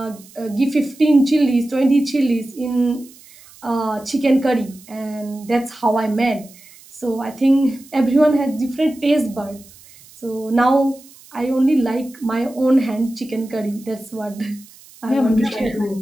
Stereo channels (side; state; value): right; noise; hiss, 23 dB below the sound